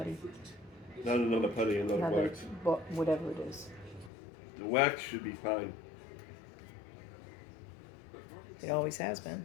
Not another putty, another wax. Whatever it is. The wax should be fine. It always has been.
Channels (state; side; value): drops out; right; at 4.1 s